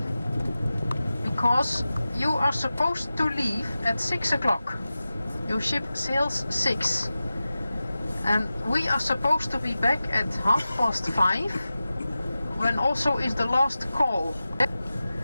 because you are supposed to leave at 6 o'clock. Your ship sails 6, and we are supposed to be back at 5:30, when also is the last call.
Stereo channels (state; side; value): inverted; both; correlation -0.95